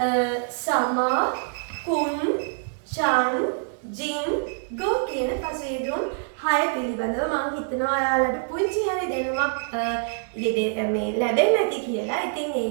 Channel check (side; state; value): left; silent; 62 dB below the other